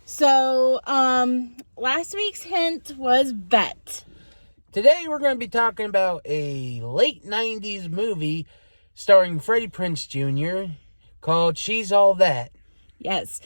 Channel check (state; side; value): inverted; both; correlation -1.00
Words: So, last week's hint was bet. Today we're going to be talking about a late 90s movie starring Freddie Prinze Jr. called She's All That. Yes.